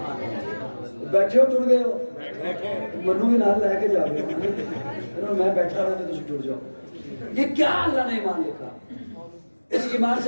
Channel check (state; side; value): inverted; both; correlation -1.00